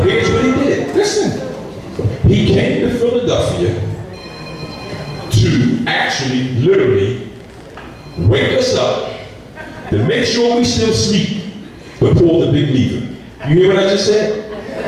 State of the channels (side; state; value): both; identical; correlation 1.00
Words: here's what he did. Listen, he came to Philadelphia to actually, literally, wake us up, to make sure we still sleep, but pull the big lever. You hear what I just said?